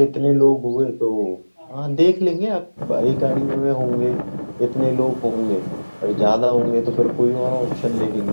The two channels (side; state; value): both; inverted; correlation -1.00